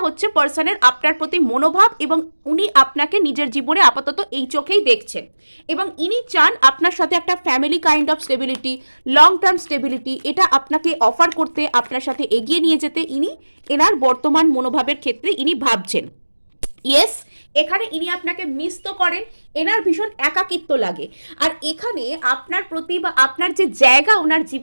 হচ্ছে পার্সনের আপনার প্রতি মনোভাব, এবং উনি আপনাকে নিজের জীবনে আপাতত এই চোখেই দেখছেন। এবং ইনি চান আপনার সাথে একটা family kind of stability, long term stability, এটা আপনাকে অফার করতে, আপনার সাথে এগিয়ে নিয়ে যেতে ইনি এনার বর্তমান মনোভাবের ক্ষেত্রে ইনি ভাবছেন। ইয়েস, এখানে ইনি আপনাকে মিস তো করেন, এনার ভীষণ একাকিত্ব লাগে। আর এখানে আপনার প্রতি বা আপনার যে জায়গা ওনার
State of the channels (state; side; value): inverted; both; correlation -1.00